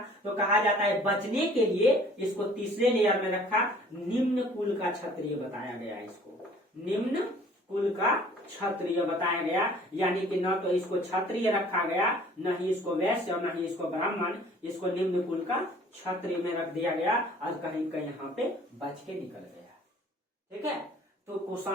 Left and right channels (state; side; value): normal; both; correlation 0.53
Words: तो कहा जाता है बचने के लिए इसको तीसरे लेयर में रखा, निम्न कुल का क्षत्रिय बताया गया, इसको निम्न कुल का क्षत्रिय बताया गया। यानी कि न तो इसको क्षत्रिय रखा गया, न ही इसको वैश्य और न ही इसको ब्राह्मण, इसको निम्न कुल का क्षत्रिय में रख दिया गया, और कहीं कहीं यहाँ पे बच के निकल गया, ठीक है। तो